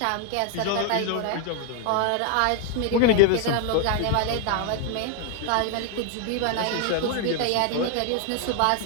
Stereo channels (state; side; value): different; both; correlation 0.00